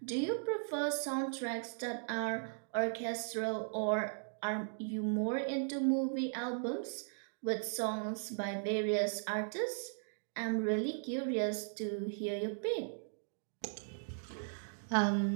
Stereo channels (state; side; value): silent; left; digital silence